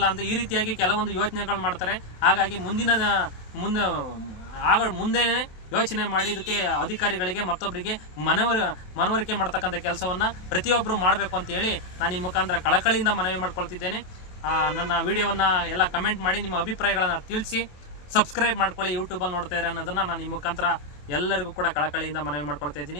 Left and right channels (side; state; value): right; late; 27 ms